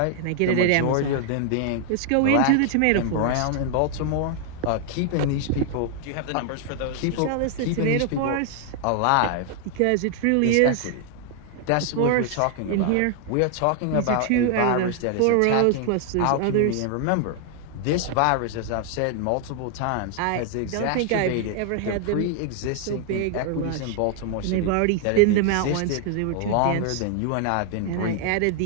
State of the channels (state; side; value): different; both; correlation 0.00